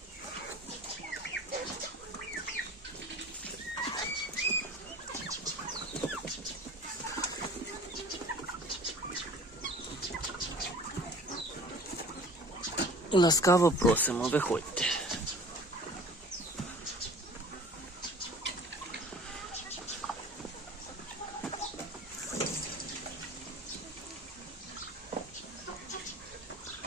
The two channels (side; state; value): both; normal; correlation 0.45